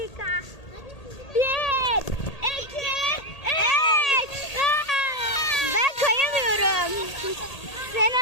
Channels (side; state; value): right; late; 1.8 ms